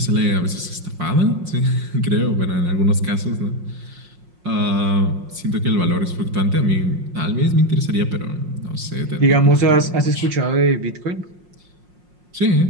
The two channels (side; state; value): left; late; 5.6 ms